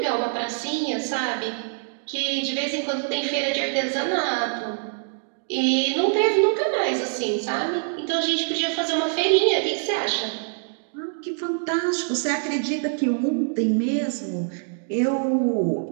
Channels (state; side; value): silent; left; digital silence